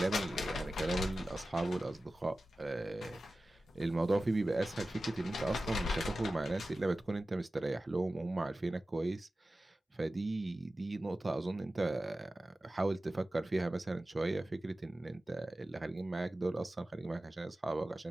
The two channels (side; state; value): both; normal; correlation 0.95